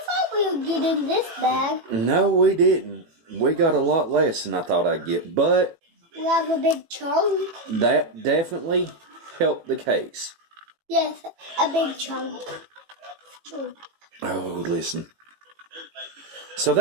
thought we'll get in this bag. No, we didn't. We got a lot less than I thought I'd get, but We have a big chunk. that definitely helped the case. Yes, a big chunk. Oh, listen. So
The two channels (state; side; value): late; left; 18 ms